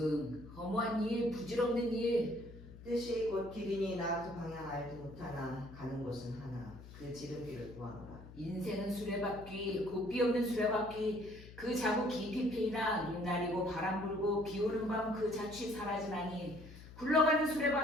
허무한 일 부질없는 일 뜻이 곧 길이니 나아도 방향 알지 못하나 가는 곳은 하나 그 지름길을 구하노라. 인생은 수레바퀴 고삐 없는 수레바퀴 그 자국 깊이 패이나 눈 나리고 바람 불고 비 오는 밤 그 자취 사라지나니 굴러가는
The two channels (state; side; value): noise; left; hum, 16 dB below the sound